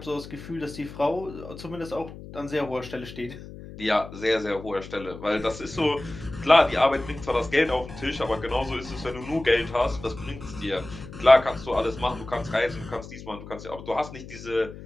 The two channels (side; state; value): left; noise; hum, 14 dB below the sound